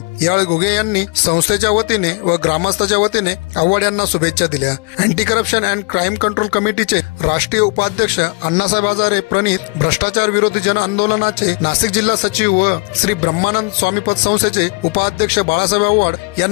यावेळी घुगे यांनी संस्थेच्या वतीने व ग्रामस्थांच्या वतीने आव्हाड यांना शुभेच्छा दिल्या। Anti corruption and crime control कमिटीचे राष्ट्रीय उपाध्यक्ष अण्णासाहेब हजारे प्रणित भ्रष्टाचार विरोधी जन आंदोलनाचे नाशिक जिल्हा सचिव व श्री ब्रह्मानंद स्वामी पतसंस्थेचे उपाध्यक्ष बाळासाहेब आव्हाड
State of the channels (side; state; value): right; quieter; 29.3 dB